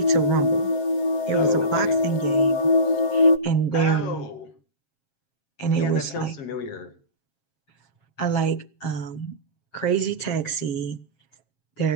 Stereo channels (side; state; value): right; late; 7.4 ms